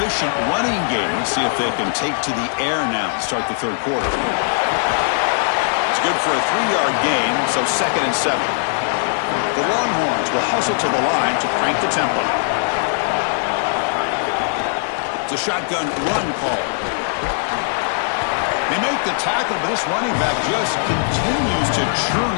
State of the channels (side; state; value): right; silent; digital silence